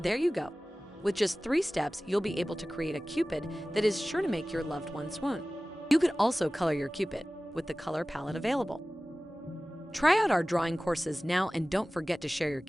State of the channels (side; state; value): both; normal; correlation 0.97